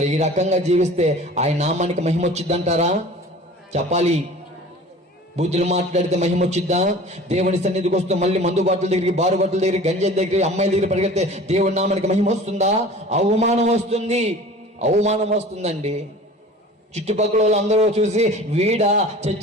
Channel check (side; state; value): both; normal; correlation 0.42